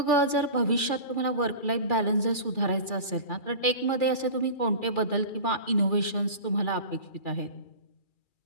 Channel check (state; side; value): late; right; 2.3 ms